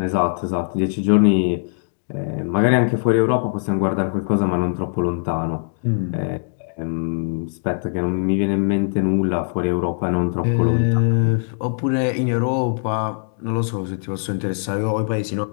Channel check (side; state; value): right; silent; digital silence